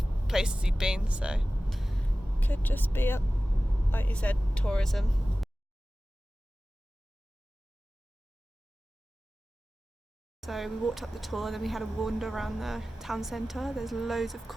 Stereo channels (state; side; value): normal; both; correlation 0.96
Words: places he'd been, so could just be, like you said, tourism. So we walked up the tour, then we had a wander around the town centre. There's loads of